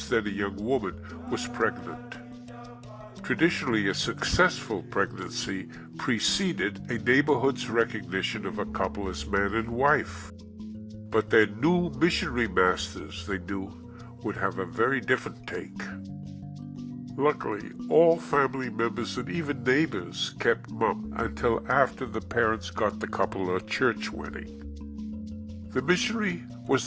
then a young woman, was pregnant. Traditionally, a successful pregnancy preceded a neighborhood's recognition of a couple as man and wife. But their new missionary masters, they knew, would have a very different take. Luckily, all family members and even neighbors kept mum until after the parents got the couple a church wedding. The missionary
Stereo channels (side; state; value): both; identical; correlation 1.00